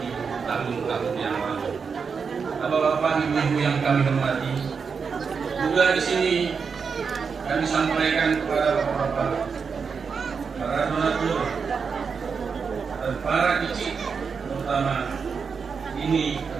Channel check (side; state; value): left; quieter; 5.7 dB